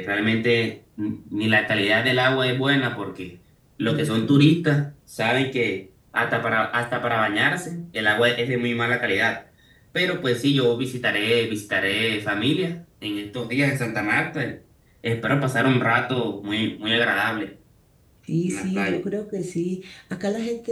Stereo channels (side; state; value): both; identical; correlation 1.00